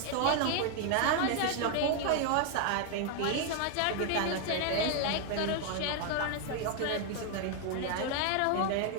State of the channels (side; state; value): both; different; correlation 0.00